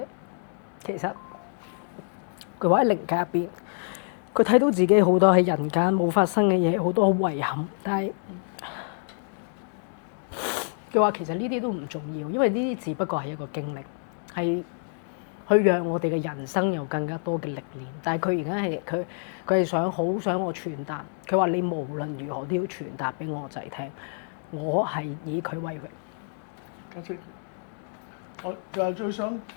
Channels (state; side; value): silent; right; 60 dB below the other